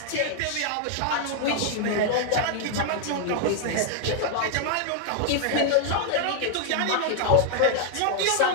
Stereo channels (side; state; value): both; different; correlation 0.00